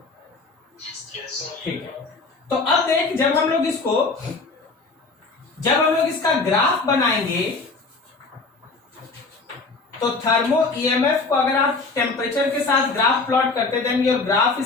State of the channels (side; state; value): right; quieter; 3.9 dB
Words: ठीक है। तो अब देख, जब हम लोग इसका ग्राफ बनाएंगे तो थर्मो ईएमएफ को अगर आप टेम्परेचर के साथ ग्राफ प्लॉट करते, then your graph